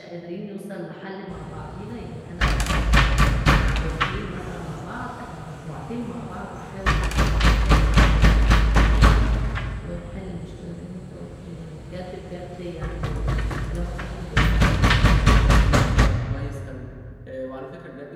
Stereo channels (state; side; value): identical; both; correlation 1.00